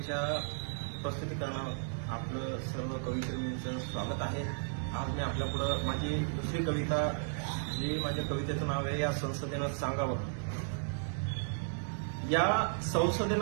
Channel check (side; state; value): left; silent; digital silence